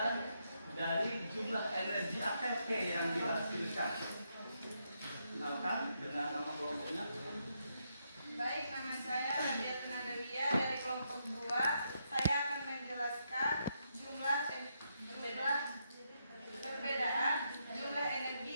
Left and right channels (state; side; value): inverted; both; correlation -0.80